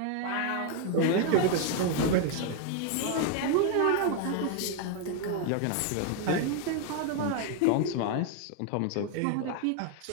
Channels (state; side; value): different; both; correlation 0.00